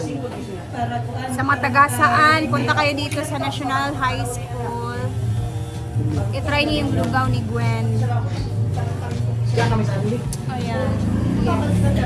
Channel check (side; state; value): both; identical; correlation 1.00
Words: sa Matagasaan, punta kayo dito sa National High School. I-try niyo yung lugaw ni Gwen. Kaya kami sa Anli. Ayan.